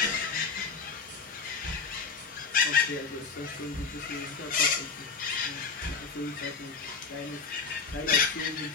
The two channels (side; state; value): right; quieter; 5.2 dB